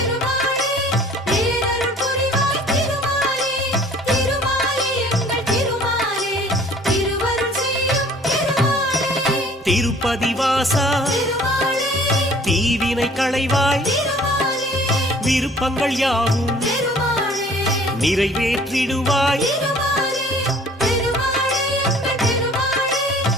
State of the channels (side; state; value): both; normal; correlation 0.52